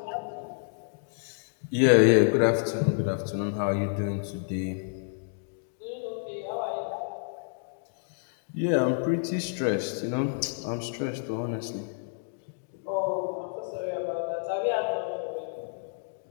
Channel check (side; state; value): right; silent; digital silence